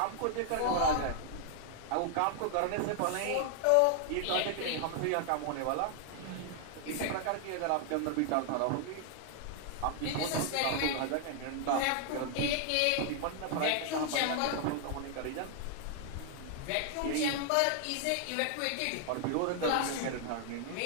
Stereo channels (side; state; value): both; different; correlation 0.00